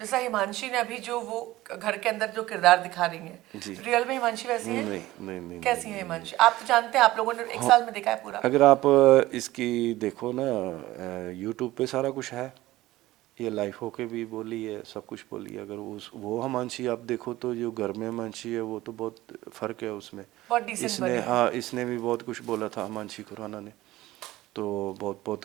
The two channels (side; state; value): left; quieter; 17.0 dB